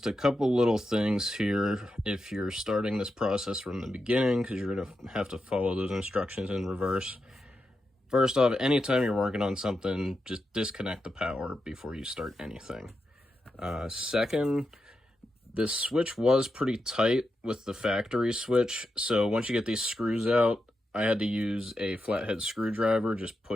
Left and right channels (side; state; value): both; normal; correlation 0.87